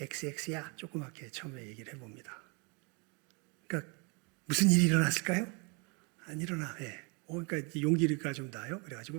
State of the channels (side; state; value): left; quieter; 32.2 dB